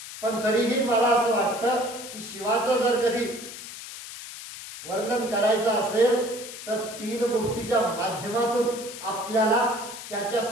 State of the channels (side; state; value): left; noise; hiss, 12 dB below the sound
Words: पण तरीही मला असं वाटतं की शिवाचं जर कधी वर्णन करायचं असेल तर 3 गोष्टीच्या माध्यमातून आपल्याला त्याच्या